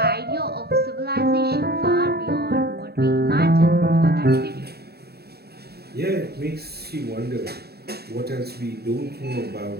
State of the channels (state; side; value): late; left; 0.47 ms